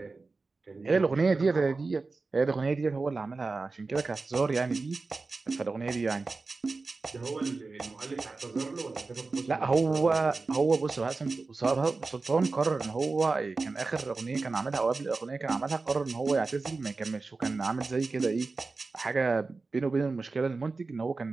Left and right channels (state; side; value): quieter; left; 3.9 dB